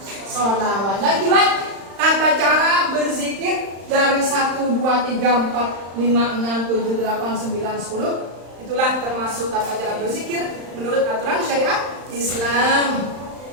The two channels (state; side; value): late; left; 35 ms